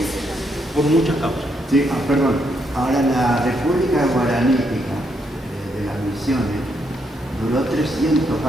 también. Por muchas causas. Sí, perdón. Ahora la República Guaranítica de las Misiones duró 300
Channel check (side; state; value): both; normal; correlation 0.77